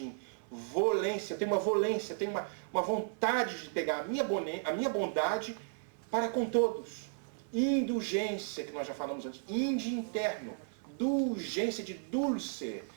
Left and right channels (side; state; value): left; silent; digital silence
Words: Volência, tem uma volência, tem uma vontade de pegar a minha bondade para com todos. Indulgência, que nós já falamos antes. Inde interno. Dulgência de dulce,